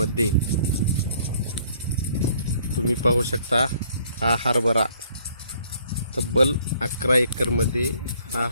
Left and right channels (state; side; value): inverted; both; correlation -0.62